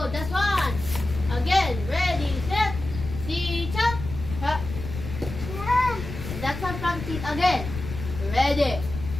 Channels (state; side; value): noise; left; rumble, 8 dB below the sound